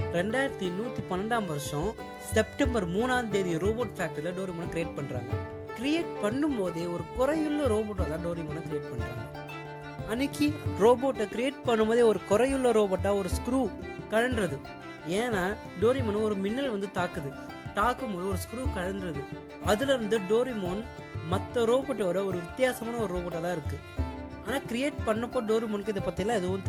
செப்டம்பர் 3 ரோபோட் ஃபேக்டரியில் டோரிமானை கிரியேட் பண்ணுறாங்க. கிரியேட் பண்ணும்போதே ஒரு குறையுள்ள ரோபோட்டை தான் டோரிமானை கிரியேட் பண்ணுறாங்க. அன்னைக்கு ரோபோட்டை கிரியேட் பண்ணும்போதே ஒரு குறையுள்ள ரோபோட்டாக ஒரு ஸ்க்ரூ கழன்றது. ஏன்னா டோரிமான் ஒரு மின்னல் தாக்கும்போது ஒரு ஸ்க்ரூ கழன்றது. அதுல இருந்து டோரிமான் மற்ற ரோபோட்டோட ஒரு வித்தியாசமான ஒரு ரோபோட்டாக தான் இருக்குது. ஆனால் கிரியேட் பண்ணப்போ டோரிமானுக்கு இதை பற்றிலாம் எதுவும்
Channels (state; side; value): identical; both; correlation 1.00